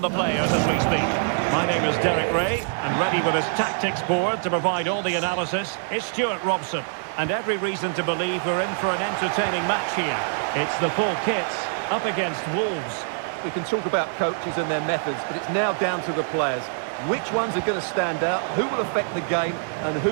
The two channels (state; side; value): silent; left; 59 dB below the other